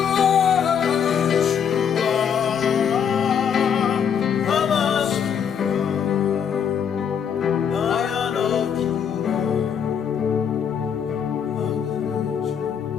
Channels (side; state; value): right; quieter; 7.7 dB